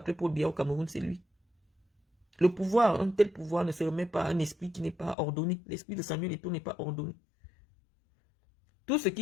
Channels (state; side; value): drops out; right; at 5.2 s